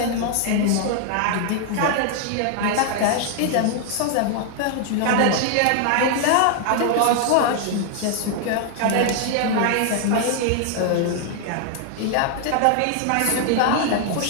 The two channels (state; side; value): different; both; correlation 0.00